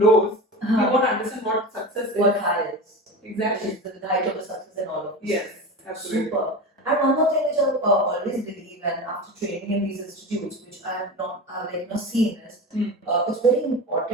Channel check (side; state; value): both; normal; correlation 0.27